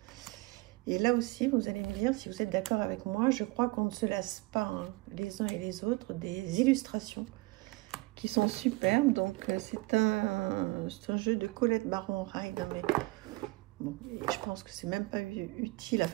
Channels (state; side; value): quieter; left; 23.4 dB